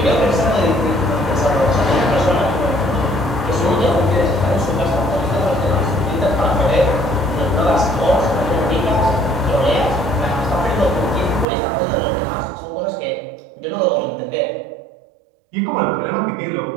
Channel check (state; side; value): drops out; left; at 11.5 s